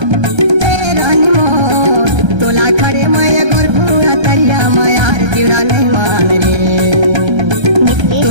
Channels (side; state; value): left; late; 1.3 ms